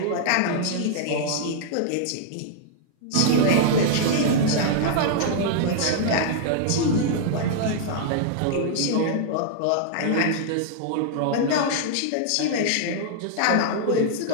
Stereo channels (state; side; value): different; both; correlation -0.01